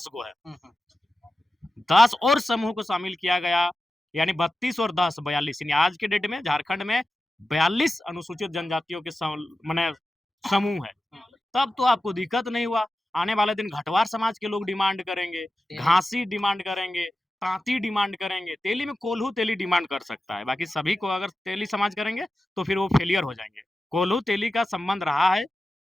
गो है। हुँ, हुँ। 10 और समूह को शामिल किया गया, यानी 32 और 10 42, यानी आज के डेट में झारखंड में 42 अनुसूचित जनजातियों के माने समूह है। हुँ, तब तो आपको दिक्कत नहीं हुआ। आने वाले दिन घटवार समाज के लोग डिमांड करेंगे, तेली घासी डिमांड करेंगे, तांती डिमांड करेंगे, तेली में कोल्हू तेली डिमांड कर सकता है। बाकी सभी को अगर तेली समाज करेंगे तो फिर वो फेलियर हो जाएँगे। कोल्हू तेली का संबंध रहा है,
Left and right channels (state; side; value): normal; both; correlation 0.93